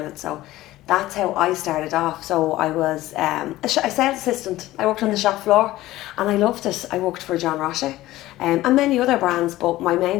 So that's how I started off. So I was a sales assistant. I worked on the shop floor and I loved it. I worked for John Roche and many other brands, but my main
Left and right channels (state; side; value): quieter; right; 16.4 dB